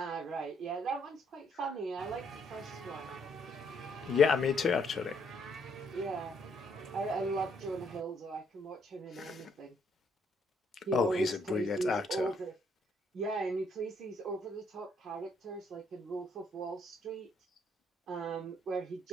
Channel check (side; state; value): both; normal; correlation 0.70